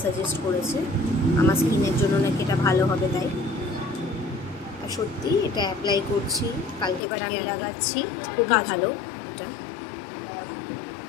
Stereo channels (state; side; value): drops out; right; at 7.0 s